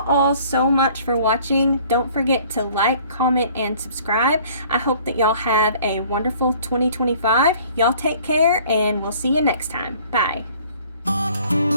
all so much for watching. Don't forget to like, comment, and subscribe. I hope that y'all have a wonderful 2025. Y'all take care, and we'll see you next time. Bye.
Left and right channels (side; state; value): both; inverted; correlation -0.54